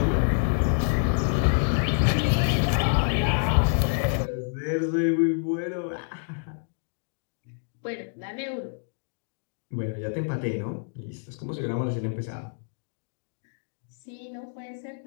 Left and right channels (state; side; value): silent; right; digital silence